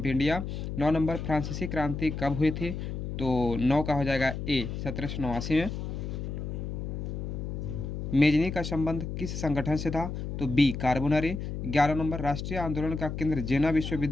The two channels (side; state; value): left; noise; hum, 5 dB below the sound